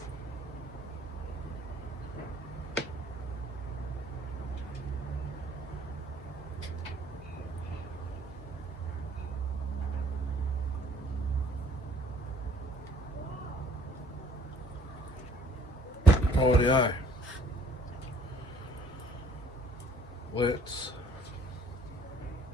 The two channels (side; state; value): both; normal; correlation 0.59